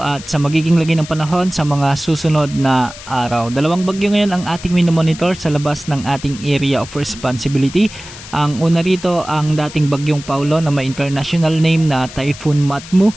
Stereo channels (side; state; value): left; noise; hiss, 15 dB below the sound